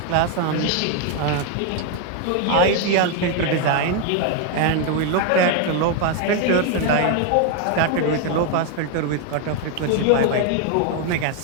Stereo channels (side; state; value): both; different; correlation 0.01